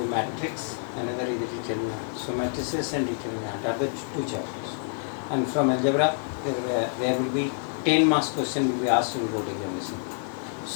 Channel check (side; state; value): right; silent; 60 dB below the other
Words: matrix, another is the determinant. So matrices and determinant are the two chapters. And from algebra there will be 10 marks question will be asked in board examination.